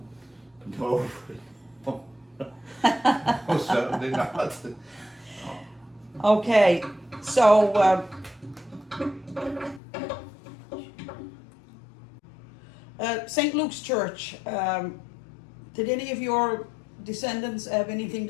No, certainly not. Okay, so St. Luke's Church. Did any of your descendants have anything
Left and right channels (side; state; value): right; drops out; at 9.8 s